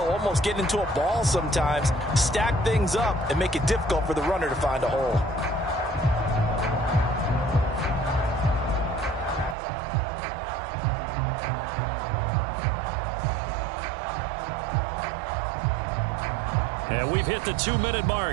almost get into a ball sometimes, stack things up, and make it difficult for the runner to find a hole. And we've hit the 2-minute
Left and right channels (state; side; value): drops out; left; at 9.6 s